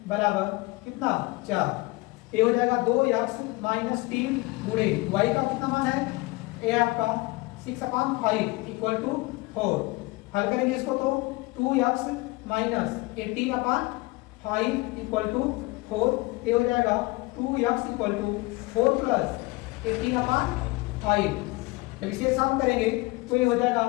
बराबर कितना 4। ये हो जाएगा 2x माइनस 3 गुणे y का कितना मान है, ये आपका 6/5 इक्वल टू 4। हल करेंगे इसको तो 2x माइनस 18/5 इक्वल टू 4। ये हो जाएगा 2x इक्वल टू 4 प्लस 18/5। जब इसे सम करेंगे तो ये हो जाएगा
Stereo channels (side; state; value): right; quieter; 23.1 dB